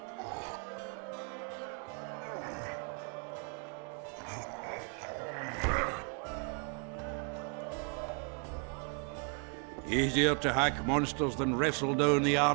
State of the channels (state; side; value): quieter; left; 37.6 dB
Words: Easier to hack monsters than wrestle down the